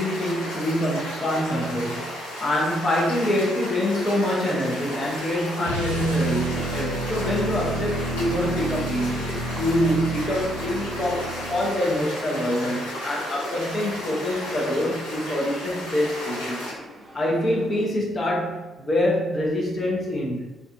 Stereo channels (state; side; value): normal; both; correlation 0.73